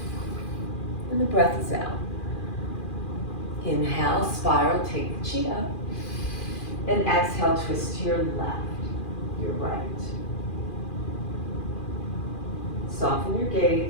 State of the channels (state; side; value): late; right; 2.4 ms